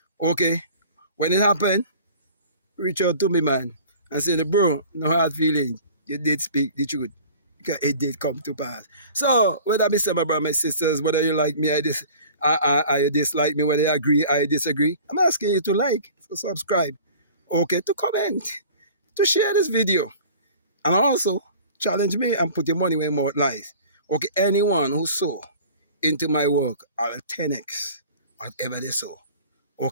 Okay? When it happened, reach out to me, man, and say, bro, no hard feelings. You did speak the truth. Because it did come to pass. So, whether I say my brother, my sisters, whether you like me, I dislike me, whether you agree, I disagree, I'm asking you to like, to subscribe, okay, to comment, to share this video, and also challenge me and put your money where more lies. Okay, anyone who sow into my work, I'll 10x whatever they sow,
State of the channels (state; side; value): inverted; both; correlation -0.44